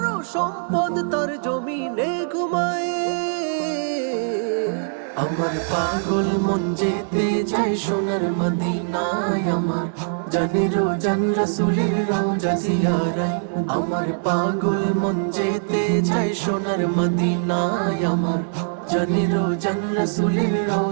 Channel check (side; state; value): left; silent; digital silence